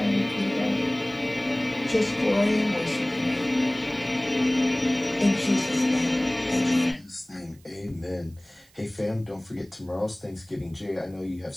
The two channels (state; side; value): noise; right; hiss, 29 dB below the sound